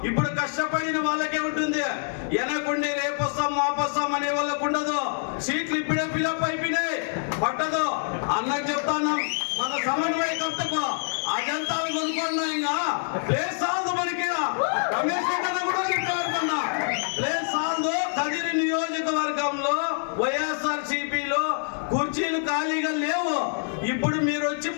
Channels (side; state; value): right; silent; digital silence